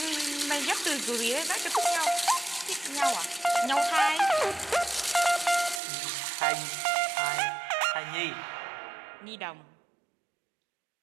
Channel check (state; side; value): drops out; left; at 5.8 s